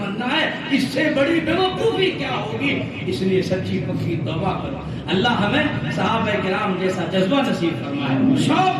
ہے. اس سے بڑی بیوقوفی کیا ہوگی؟ اس لیے سچی پکی توبہ کرو. اللہ ہمیں صحابہ کرام جیسا جذبہ نصیب فرمائے،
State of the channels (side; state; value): both; identical; correlation 1.00